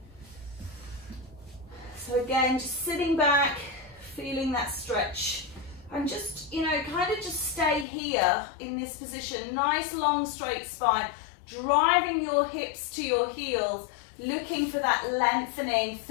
So again, just sitting back, feeling that stretch, and just, you know, kind of just stay here in this position. Nice long straight spine, driving your hips to your heels, looking for that lengthening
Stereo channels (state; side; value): drops out; right; at 7.9 s